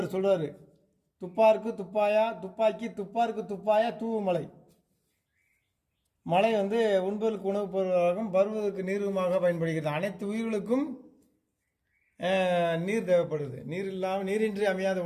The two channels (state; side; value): identical; both; correlation 1.00